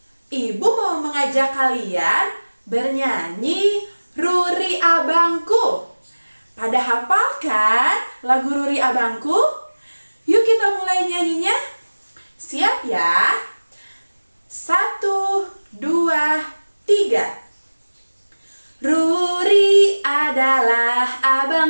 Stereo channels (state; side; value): inverted; both; correlation -1.00